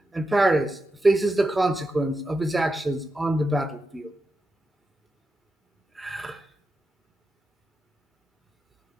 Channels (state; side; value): normal; both; correlation 0.89